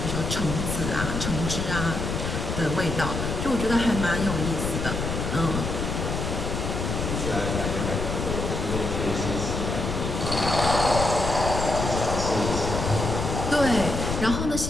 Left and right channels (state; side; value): noise; left; rumble, 3 dB below the sound